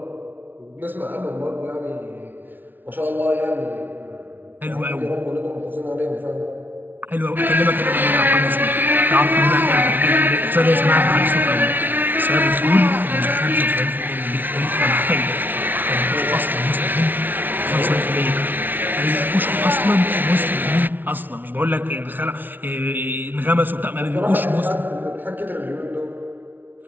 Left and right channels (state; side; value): late; left; 0.088 ms